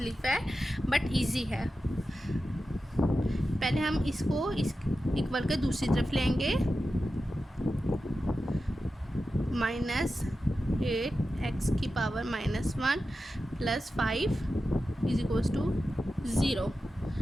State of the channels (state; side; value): normal; both; correlation 0.92